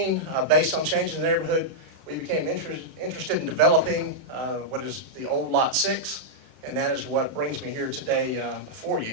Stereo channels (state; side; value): late; left; 31 ms